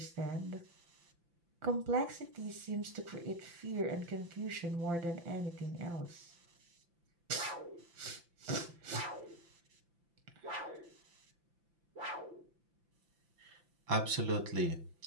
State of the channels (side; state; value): left; late; 5.8 ms